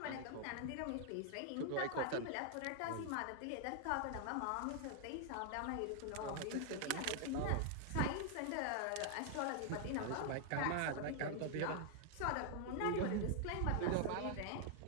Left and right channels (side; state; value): both; different; correlation 0.00